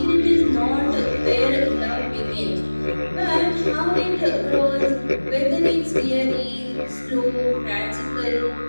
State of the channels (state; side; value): inverted; both; correlation -1.00